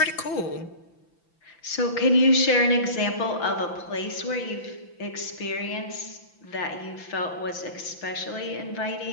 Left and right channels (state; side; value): late; right; 5.9 ms